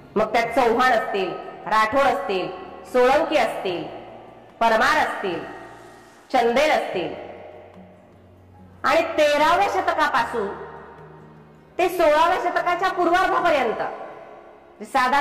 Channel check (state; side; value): identical; both; correlation 1.00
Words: मग त्यात चौहान असतील, राठोड असतील, सोळंकी असतील, परमार असतील, चंदेल असतील आणि 13व्या शतकापासून ते 16व्या शतकाच्या पूर्वार्धापर्यंत